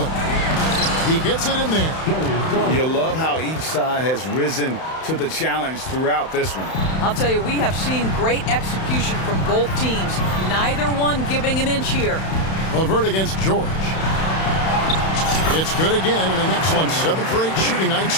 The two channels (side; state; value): right; late; 31 ms